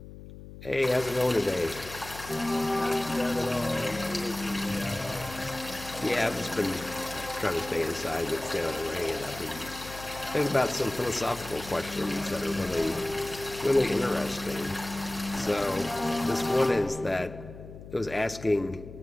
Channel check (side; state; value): left; noise; hum, 14 dB below the sound